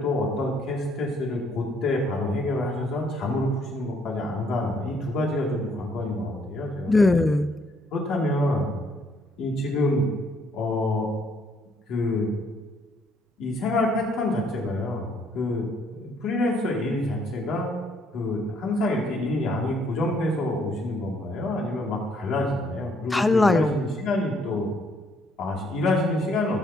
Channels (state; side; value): normal; both; correlation 0.68